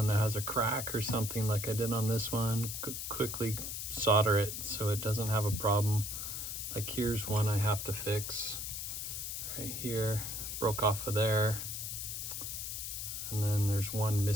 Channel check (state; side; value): noise; left; hiss, 5 dB below the sound